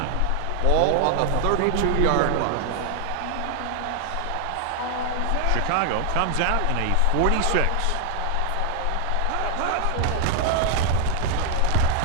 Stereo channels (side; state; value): both; different; correlation 0.00